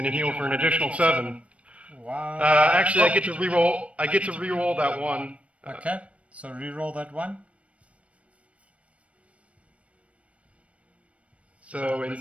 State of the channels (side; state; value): left; late; 0.063 ms